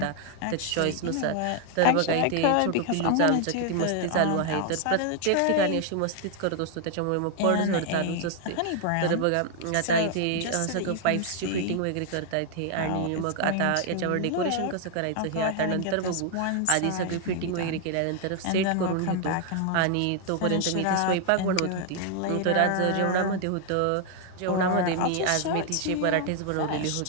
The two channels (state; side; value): different; both; correlation 0.00